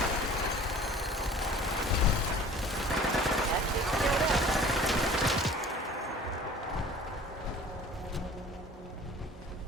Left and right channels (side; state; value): both; normal; correlation 0.46